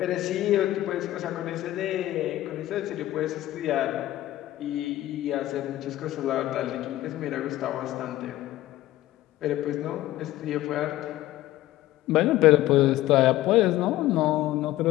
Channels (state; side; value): quieter; right; 15.2 dB